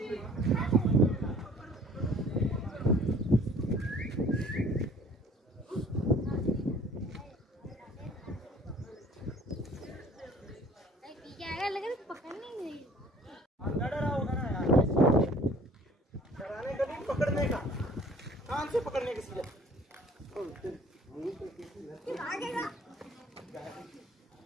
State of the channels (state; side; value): normal; both; correlation 0.53